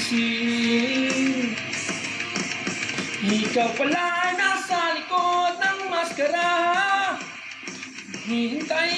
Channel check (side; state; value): both; identical; correlation 1.00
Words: Ikaw pala ay nasa likod ng maskara,